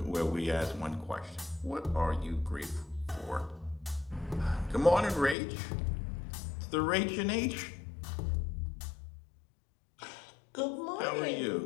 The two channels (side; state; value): right; drops out; at 5.4 s